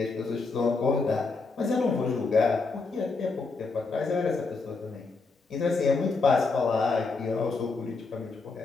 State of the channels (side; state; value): right; quieter; 4.1 dB